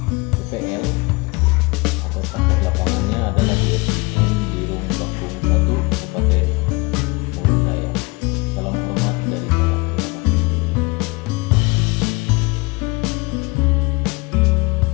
PPL atau praktek lapangannya adalah di SDN Birung Bakung 1, Kabupaten Mulut Raya. Salam hormat dari saya.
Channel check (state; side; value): quieter; right; 25.7 dB